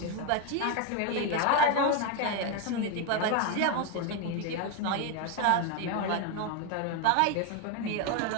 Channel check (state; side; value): different; both; correlation 0.01